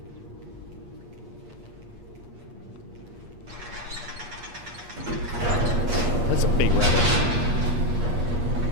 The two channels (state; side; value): late; left; 8.4 ms